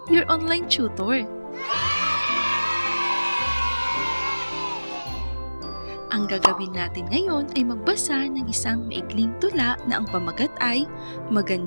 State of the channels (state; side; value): inverted; both; correlation -1.00